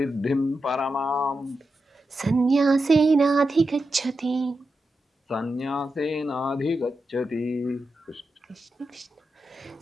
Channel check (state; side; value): normal; both; correlation 0.89